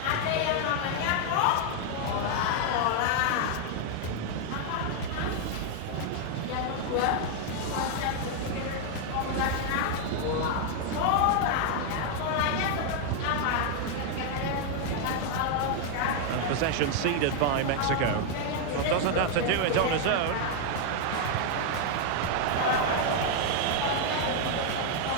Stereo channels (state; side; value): different; both; correlation 0.00